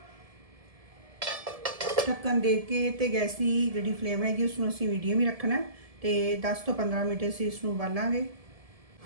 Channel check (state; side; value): late; left; 1.7 ms